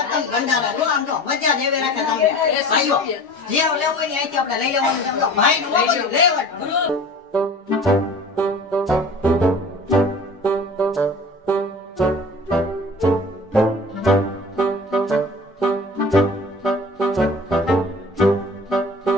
ભંડારા જો આમ જો મજા દેવે રાખે તમને ભાઈઓ જે લેવું હોય ને અહીંથી આપણે લઈ લેવાનું છે. આમ જો ભાઈ નું બધું લેવાનું.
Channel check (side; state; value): both; normal; correlation 0.41